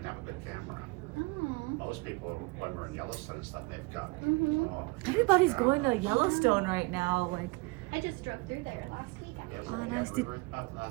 have a good camera. Oh. Most people, when we're in Yellowstone and stuff, they've got. Mhm. Everybody's going to Yellowstone right now. Like, I just drove through there last week. Yeah, Actually. Oh, nice. we were up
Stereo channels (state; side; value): quieter; left; 26.6 dB